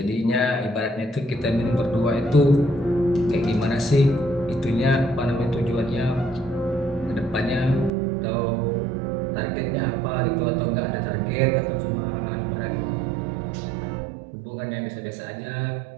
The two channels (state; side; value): drops out; left; at 7.9 s